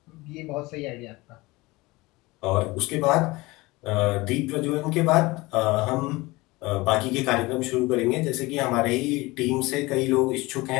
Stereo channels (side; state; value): right; quieter; 21.8 dB